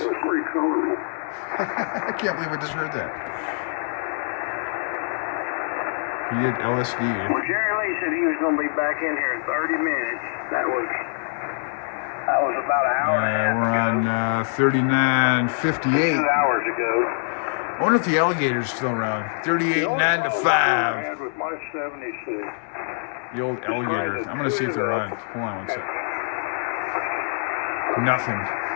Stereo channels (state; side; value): silent; right; 62 dB below the other